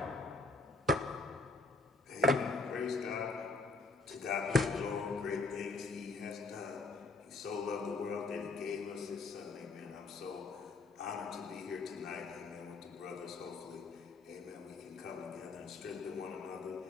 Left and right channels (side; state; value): right; quieter; 3.6 dB